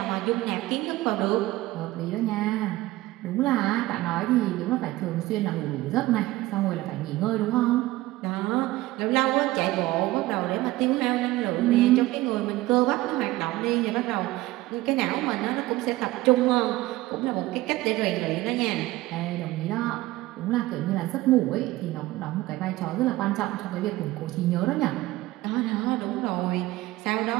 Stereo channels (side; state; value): left; quieter; 17.9 dB